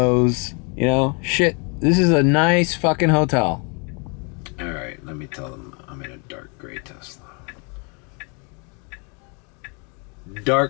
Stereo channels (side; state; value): right; quieter; 34.4 dB